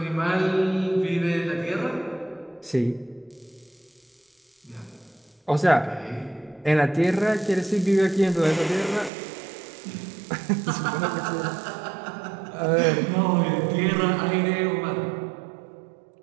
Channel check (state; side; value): drops out; left; at 9.1 s